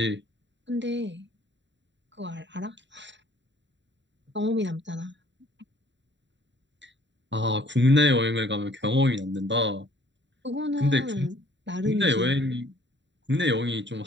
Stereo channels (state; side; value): late; left; 0.52 ms